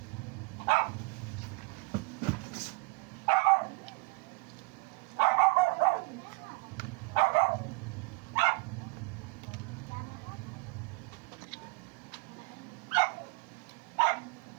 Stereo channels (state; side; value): quieter; left; 29.3 dB